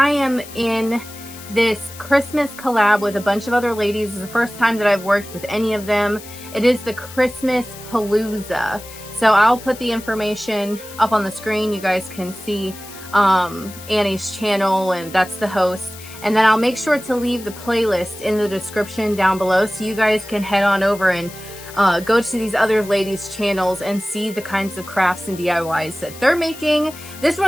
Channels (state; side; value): noise; left; hiss, 16 dB below the sound